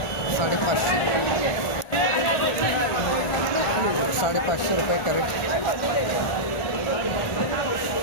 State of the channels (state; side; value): late; right; 1.4 ms